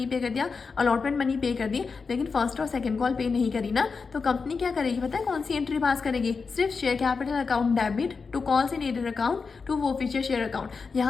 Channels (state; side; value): quieter; right; 4.9 dB